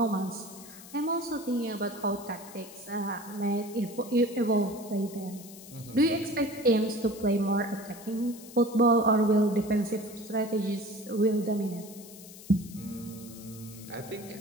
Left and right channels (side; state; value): left; noise; hiss, 17 dB below the sound